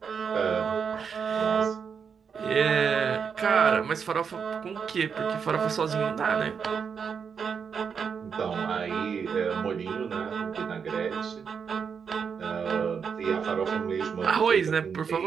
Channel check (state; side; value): quieter; left; 6.5 dB